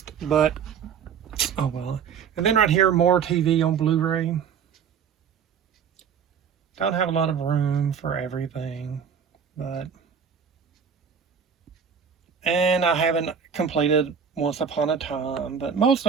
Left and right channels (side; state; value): left; quieter; 7.1 dB